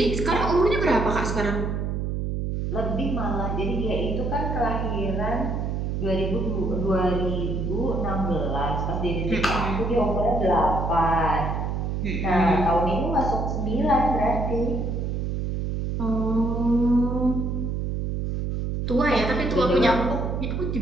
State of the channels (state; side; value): noise; right; hum, 1 dB below the sound